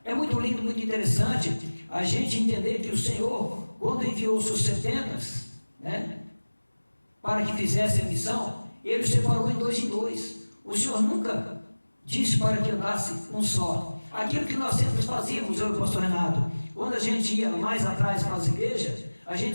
É muito lindo, muito interessante a gente entender que o Senhor, quando enviou os seus 70, né, para que fizessem a missão, ele os separou em dois. O Senhor nunca disse para que andasse um só. Aquilo que nós sempre fazíamos, eu e o pastor Renato, quando a gente ia mais atrás para as igrejas, a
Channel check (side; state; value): both; inverted; correlation -1.00